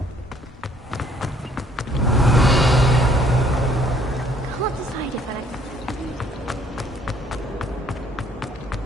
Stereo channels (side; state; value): both; normal; correlation 0.62